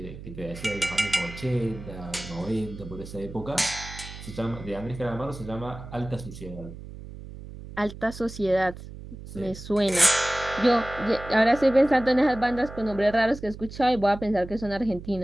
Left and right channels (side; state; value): right; noise; hum, 13 dB below the sound